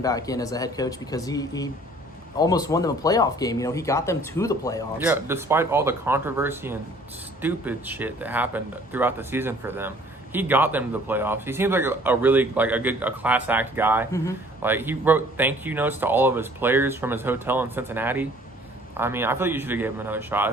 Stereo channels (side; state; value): both; normal; correlation 0.55